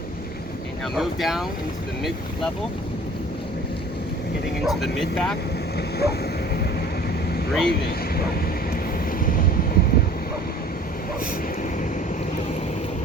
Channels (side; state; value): both; normal; correlation 0.47